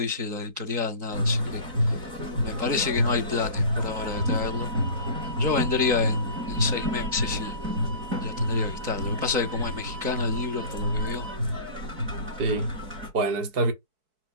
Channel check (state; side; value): late; left; 4.6 ms